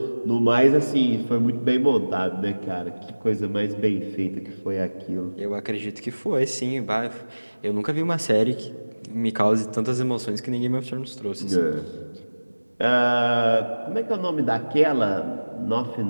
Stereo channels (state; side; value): inverted; both; correlation -1.00